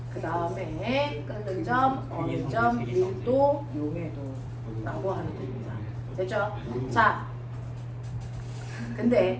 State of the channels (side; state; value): both; identical; correlation 1.00